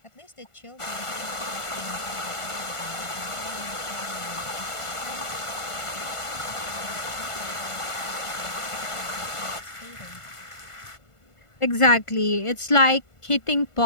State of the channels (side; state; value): right; late; 1.5 ms